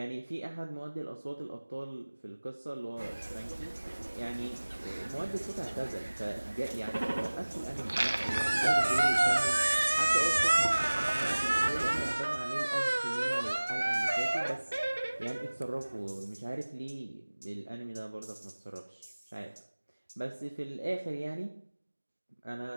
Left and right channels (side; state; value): both; inverted; correlation -1.00